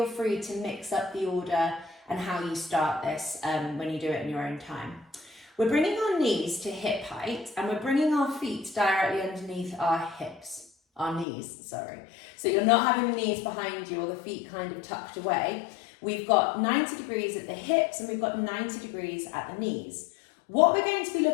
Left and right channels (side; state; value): right; drops out; at 11.2 s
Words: free to mix up the order and how you start this when you do it in your own time. We're bringing our knees to hip height and we're bringing our feet directly underneath our knees. So you're not having the knees behind you or the feet kind of tucked away. We've got 90 degrees at the hips and we've got 90 degrees at the knees. What we're going to be